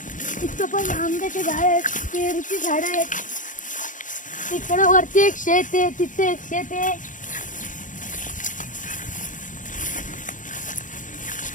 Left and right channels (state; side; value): late; right; 0.37 ms